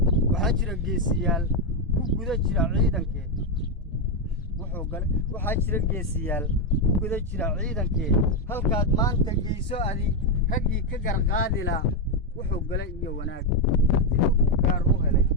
waxaa jira geesiyaal ku guda jira ciidankee halkaad maanta geyso adi raggii ka garqaadilaa wuxuu gala iyo wanaag gaar u helay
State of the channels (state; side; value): normal; both; correlation 0.04